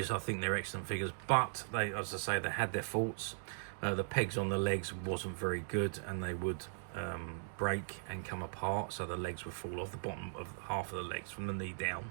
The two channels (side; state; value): left; silent; digital silence